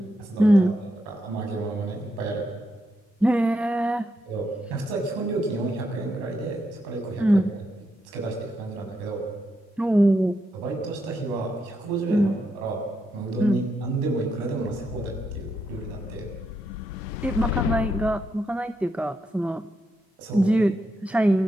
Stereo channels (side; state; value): both; normal; correlation 0.82